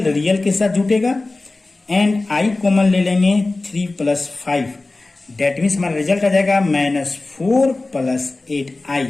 के साथ जुटेगा, एंड I कॉमन ले लेंगे 3 प्लस 5। डेट मीन्स हमारा रिजल्ट आ जाएगा -4 प्लस 8I।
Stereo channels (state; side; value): quieter; right; 3.2 dB